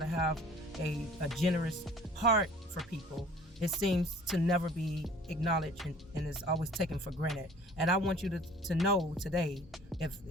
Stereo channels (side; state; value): both; normal; correlation 0.50